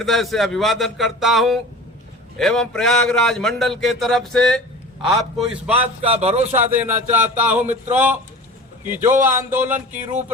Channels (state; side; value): normal; both; correlation 0.38